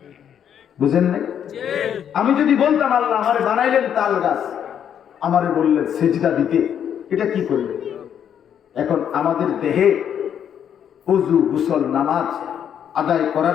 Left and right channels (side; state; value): right; quieter; 8.9 dB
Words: বুঝেন নাই? আমি যদি বলতাম আল্লাহ আমারে বানাইলেন তাল গাছ, আমারে বললেন সেজদা দিতে, এটা কি করবে? এখন আমাদের দেহে ওযু, গোসল, নামাজ আদায়